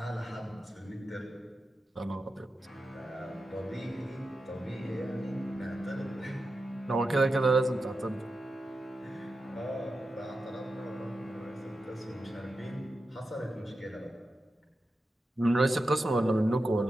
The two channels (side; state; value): both; normal; correlation 0.90